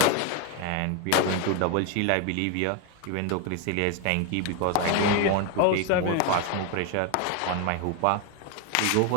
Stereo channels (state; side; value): different; both; correlation 0.01